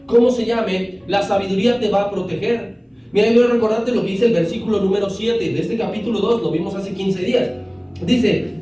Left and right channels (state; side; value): identical; both; correlation 1.00